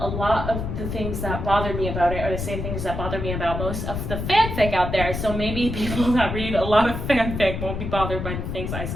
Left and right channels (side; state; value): left; noise; rumble, 4 dB below the sound